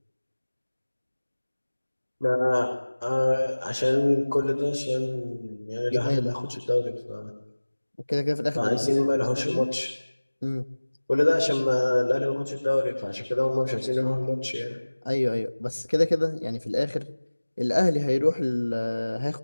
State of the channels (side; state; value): both; inverted; correlation -1.00